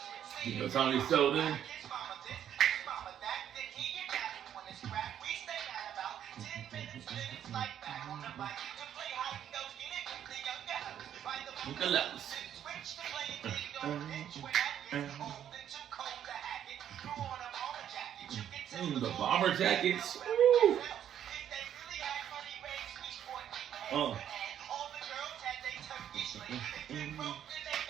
You know Tommy Selden. Look at those. The bomber jackets. Woo.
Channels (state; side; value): quieter; left; 10.0 dB